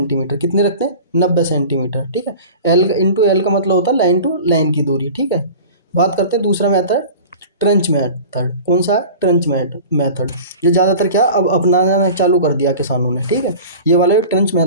कितने रखते हैं, 90 सेंटीमीटर। ठीक है, एल इंटू एल का मतलब होता है लाइन टू लाइन की दूरी। ठीक है, बात करते हैं दूसरा मेथड, ट्रेंच मेथड। कौन सा है, ट्रेंच मेथड। ये ज़्यादातर क्या अब अपनाना चालू कर दिया किसानों ने। ठीक है, ये वाला जो ट्रेंच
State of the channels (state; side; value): inverted; both; correlation -0.38